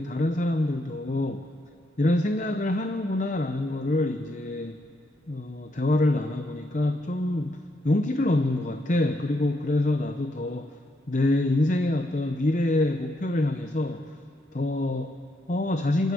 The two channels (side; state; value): both; normal; correlation 0.78